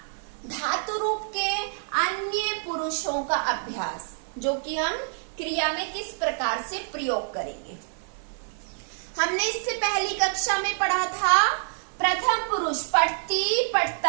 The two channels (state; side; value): silent; left; 60 dB below the other